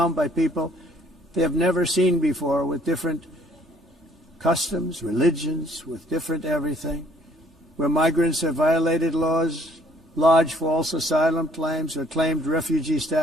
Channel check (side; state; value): both; normal; correlation 0.61